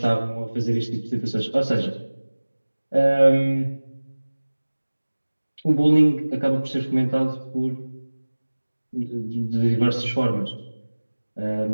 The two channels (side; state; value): both; inverted; correlation -1.00